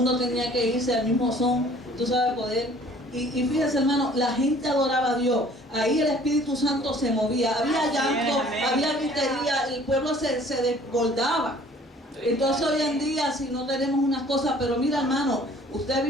tenía que irse al mismo son, tú sabes, poder. Y fíjese, hermano, la gente adoraba a Dios. Ahí el Espíritu Santo se movía, había llanto, había gritería, el pueblo se desbordaba. Entonces hoy en día, si no tenemos unas cosas, pero mira, hermano, usted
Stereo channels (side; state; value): both; normal; correlation 0.53